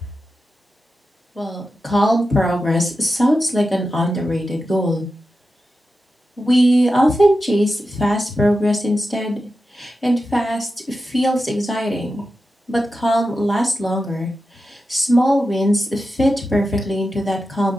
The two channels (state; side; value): normal; both; correlation 0.91